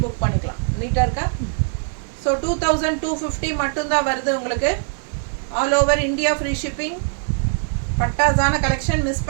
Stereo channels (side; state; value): left; silent; digital silence